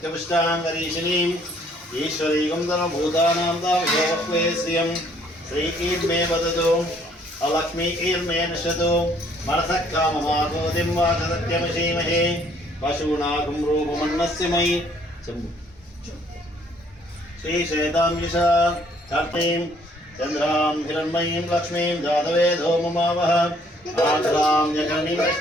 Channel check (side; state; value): both; normal; correlation 0.63